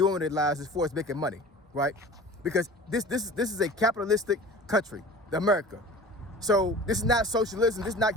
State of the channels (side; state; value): both; normal; correlation 0.40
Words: with their lives as far as making money, right? Because this is a capitalistic country, America. So this is not socialism, this